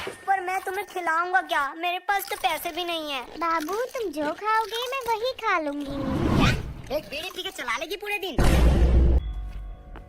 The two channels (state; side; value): identical; both; correlation 1.00